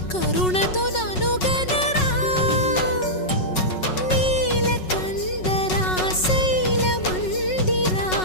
కరుణతో ననుగనరా నీలకందరా శైల మందిరా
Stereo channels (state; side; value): late; right; 5.4 ms